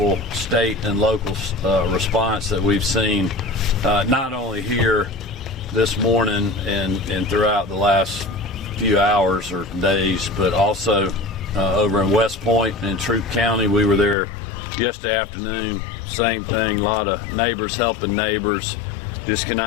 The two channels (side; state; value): right; drops out; at 14.2 s